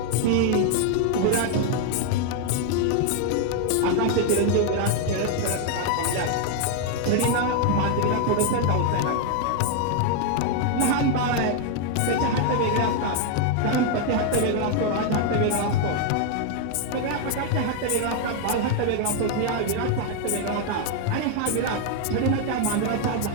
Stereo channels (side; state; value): both; different; correlation 0.00